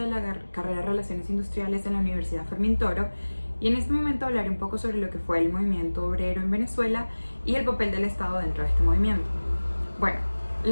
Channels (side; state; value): both; inverted; correlation -1.00